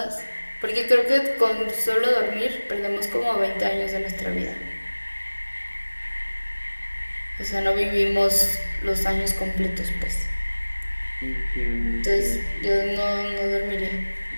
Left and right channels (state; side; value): inverted; both; correlation -1.00